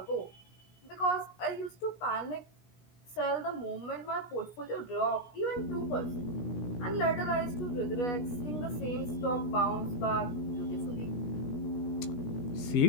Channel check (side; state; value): right; late; 16 ms